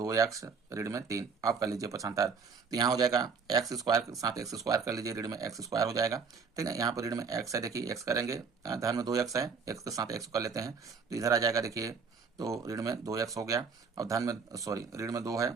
ऋण में 3। आप कर लीजिए पक्षांतर, तो यहाँ हो जाएगा एक्स स्क्वायर के साथ एक्स स्क्वायर कर लीजिए, ऋण में एक्स स्क्वायर हो जाएगा, ठीक है। यहाँ पर ऋण में x है, देखिए x करेंगे, धन में 2x है, x के साथ x कर लेते हैं तो इधर आ जाएगा देखिए, तो ऋण में 2x हो गया और धन में सॉरी ऋण में 2 है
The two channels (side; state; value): left; quieter; 5.4 dB